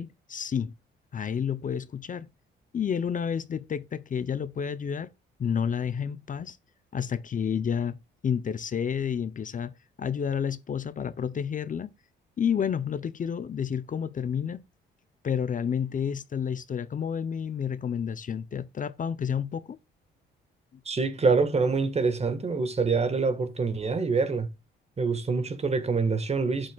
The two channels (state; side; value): normal; both; correlation 0.61